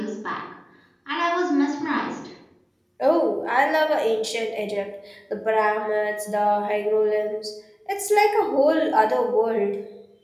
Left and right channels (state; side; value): identical; both; correlation 1.00